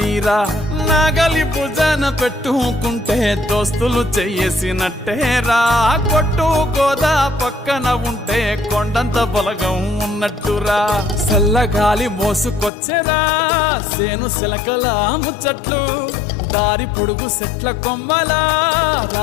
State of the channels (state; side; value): drops out; right; at 12.7 s